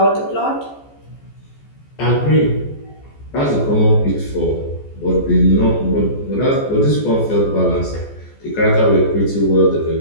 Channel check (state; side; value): late; right; 14 ms